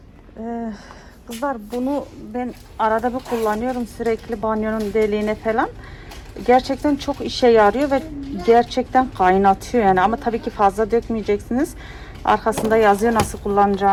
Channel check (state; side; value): identical; both; correlation 1.00